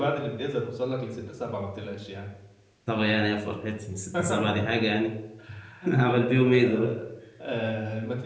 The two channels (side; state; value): both; identical; correlation 1.00